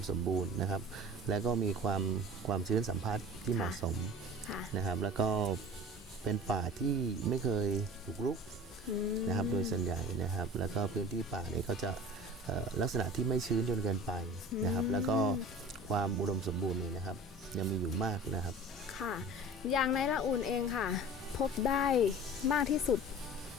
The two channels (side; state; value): both; normal; correlation 0.38